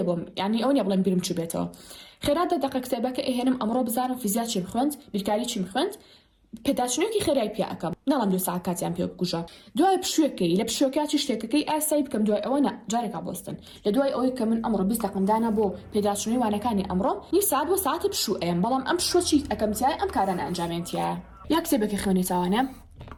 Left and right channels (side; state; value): both; identical; correlation 1.00